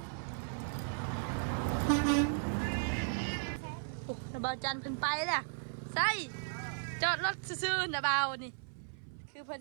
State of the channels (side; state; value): left; silent; 54 dB below the other